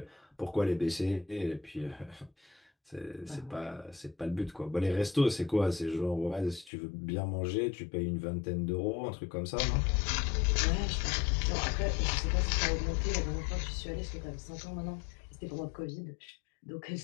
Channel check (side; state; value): right; drops out; at 6.7 s